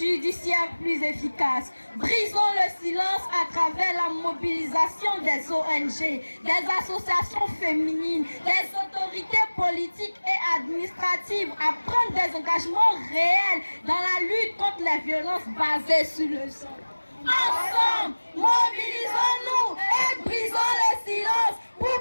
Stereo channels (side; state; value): both; inverted; correlation -1.00